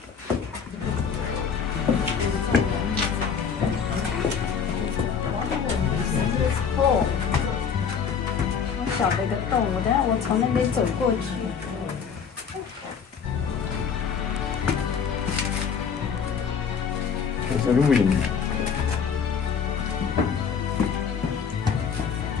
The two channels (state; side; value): quieter; right; 6.6 dB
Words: Oh，好小的一个洞，我从那边走过去。There's a ruin.